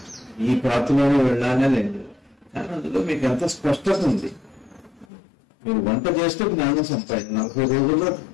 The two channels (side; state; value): right; drops out; at 5.1 s